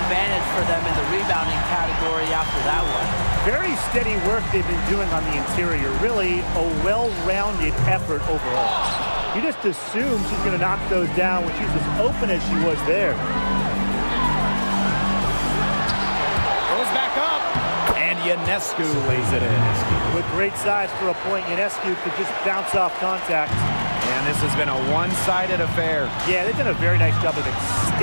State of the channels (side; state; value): both; inverted; correlation -1.00